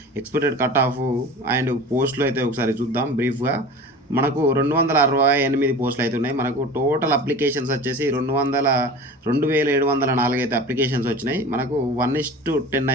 ఎక్స్పెక్టెడ్ కట్ ఆఫ్ అండ్ పోస్టులు అయితే ఒకసారి చూద్దాం బ్రీఫ్గా. మనకు 268 పోస్టులు అయితే ఉన్నాయి. మనకు టోటల్ అప్లికేషన్స్ వచ్చేసి 2704 అయితే అప్లికేషన్స్ వచ్చినాయి. మనకు 1:10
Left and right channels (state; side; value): normal; both; correlation 0.37